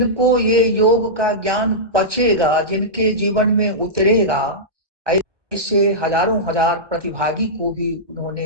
ये योग का ज्ञान पचेगा, जिनके जीवन में उतरेगा, ऐसे हजारों हजार प्रतिभागी को भी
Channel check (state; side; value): late; left; 1.0 ms